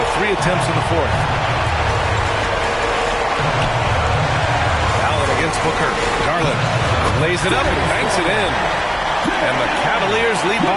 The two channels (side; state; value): both; identical; correlation 1.00